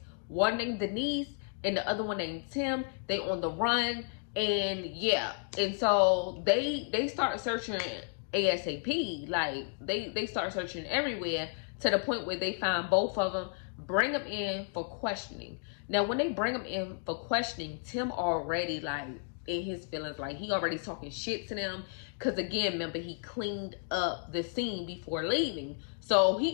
one named Denise and the other one named Tim. They on the run. And yeah, and so they start searching ASAP. Like, they start searching everywhere, to the point where they find both of them, bring them in for questioning. Now when they bring them in for questioning, Tim already like in his feelings, like he already talking shit to them, because again, remember, he cleaned up the scene before leaving. So he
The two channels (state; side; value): silent; right; 56 dB below the other